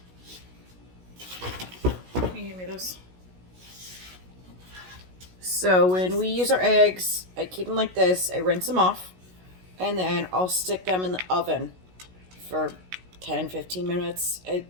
Can you give me those? So when we use our eggs, I keep them like this. I rinse them off, and then I'll stick them in the oven for 10-15 minutes.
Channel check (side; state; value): left; late; 16 ms